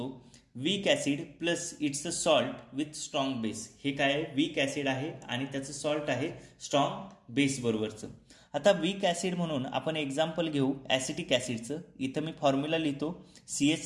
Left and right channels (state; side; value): identical; both; correlation 1.00